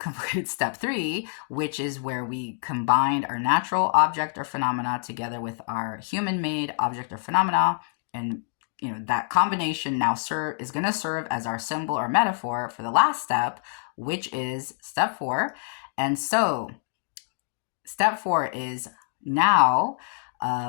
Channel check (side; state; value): right; silent; digital silence